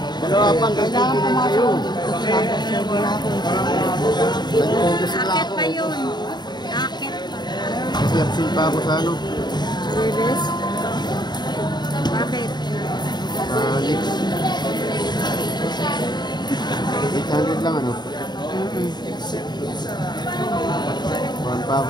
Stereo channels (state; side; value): late; right; 0.21 ms